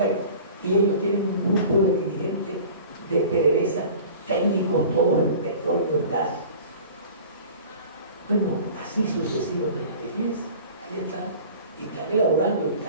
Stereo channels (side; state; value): both; inverted; correlation -0.42